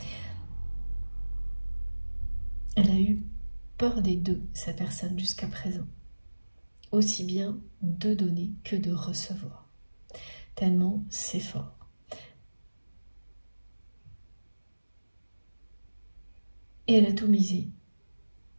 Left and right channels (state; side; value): inverted; both; correlation -1.00